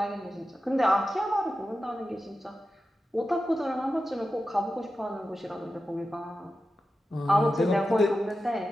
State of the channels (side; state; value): both; normal; correlation 0.92